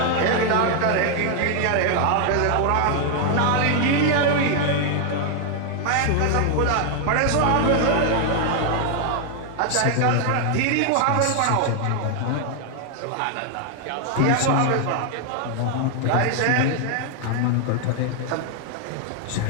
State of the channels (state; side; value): different; both; correlation 0.00